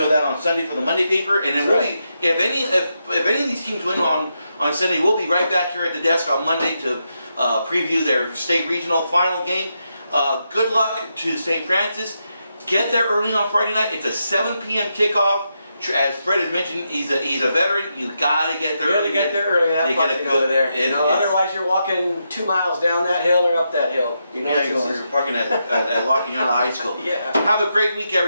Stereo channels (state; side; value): inverted; both; correlation -0.84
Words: of that on Sunday for the Monday paper. And then if any of these teams win on Sunday, we'll be right back here at the desk on Monday to preview their state regional final game. Good luck to St. Francis. Get there early on Friday night. It's a 7 p.m. kickoff. As Fred has mentioned, he's a veteran. You gotta get there early. You gotta get there early. Have fun over there. Otherwise, you're walking 2 miles down that hill or up that hill. You know, you're parking at Lockingham High School. Yeah. Have a great week,